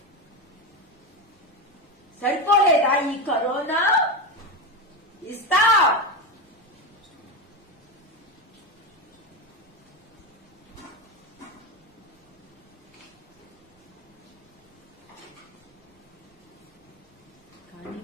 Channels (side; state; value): both; normal; correlation 0.16